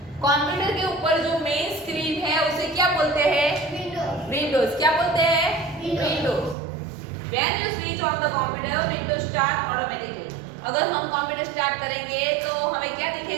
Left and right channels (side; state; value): left; drops out; at 6.6 s